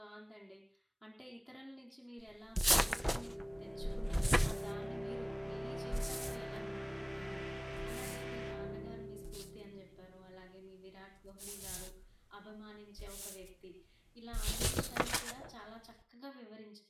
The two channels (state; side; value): identical; both; correlation 1.00